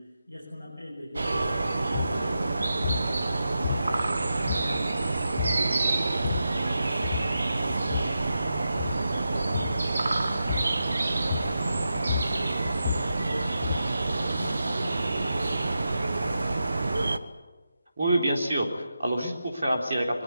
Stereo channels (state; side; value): inverted; both; correlation -0.89